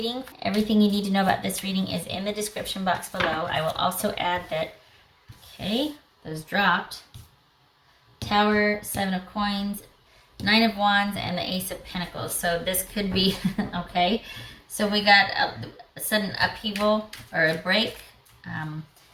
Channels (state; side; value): identical; both; correlation 1.00